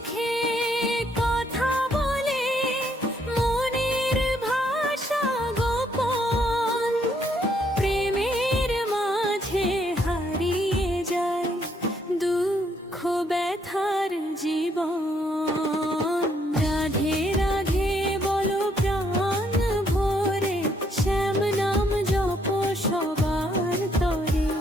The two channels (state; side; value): normal; both; correlation 0.71